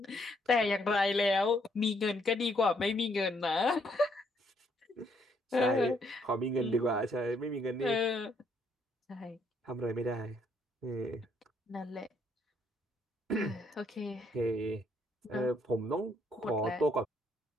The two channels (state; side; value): normal; both; correlation 0.70